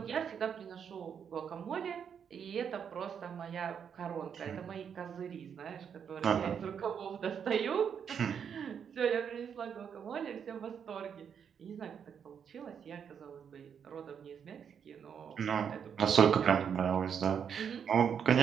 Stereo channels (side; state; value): left; quieter; 7.6 dB